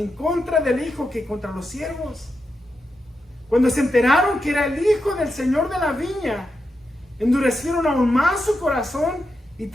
contra del Hijo que contra los siervos. Cuando se enteraron que era el Hijo del Señor de la viña, endurecieron aún más su corazón y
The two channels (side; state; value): both; normal; correlation 0.87